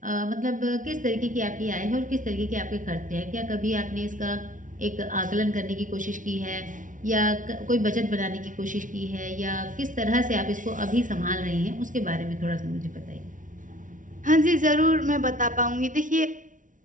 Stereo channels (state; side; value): late; left; 0.38 ms